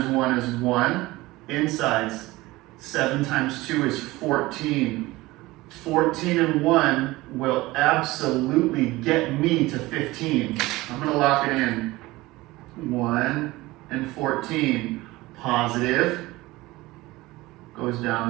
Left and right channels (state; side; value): quieter; left; 19.7 dB